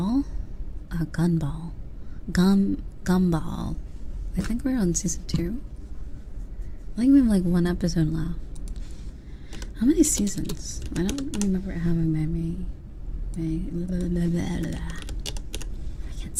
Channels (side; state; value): both; identical; correlation 1.00